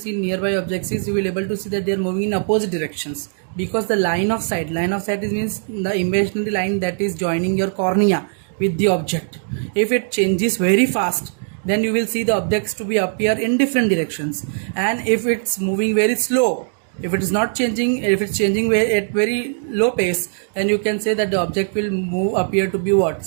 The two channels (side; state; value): left; silent; digital silence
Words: nearby objects, you will able to see that they are moving in opposite directions, because the line of sight is means the imaginary line that is joining your cornea with the object. If it changes very fast, then you will see the objects to be appear in different directions, and if it's moving very slow, if it is not changing, if it's changing at very low pace, then you can say that the object will appear to be what?